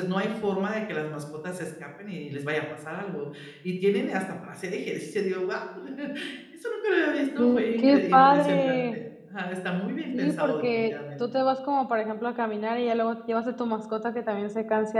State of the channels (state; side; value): identical; both; correlation 1.00